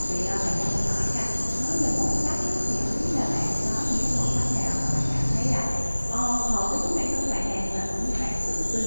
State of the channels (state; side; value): inverted; both; correlation -1.00